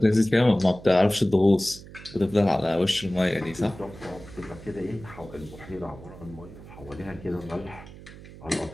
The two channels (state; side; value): noise; right; hum, 17 dB below the sound